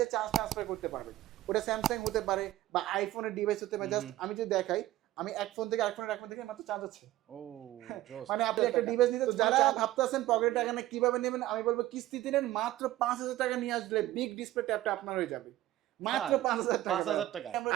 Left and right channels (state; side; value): quieter; left; 15.3 dB